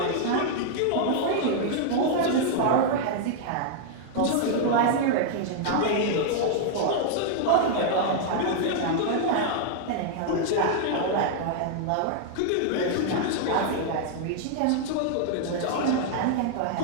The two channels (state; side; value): different; both; correlation -0.01